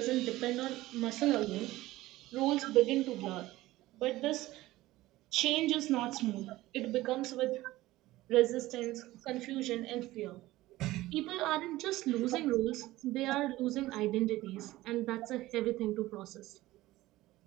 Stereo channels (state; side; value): quieter; left; 17.3 dB